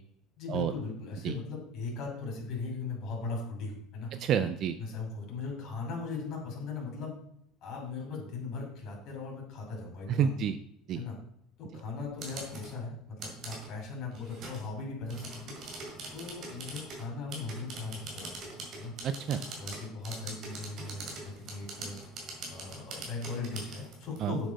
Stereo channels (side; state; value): both; normal; correlation 0.38